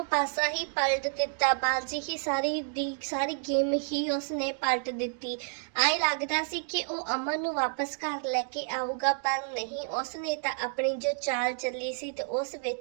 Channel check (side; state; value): left; silent; 56 dB below the other